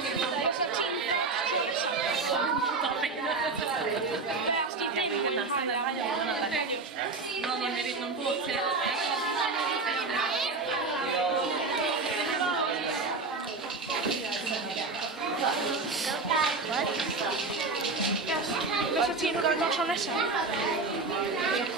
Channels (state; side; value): quieter; left; 3.9 dB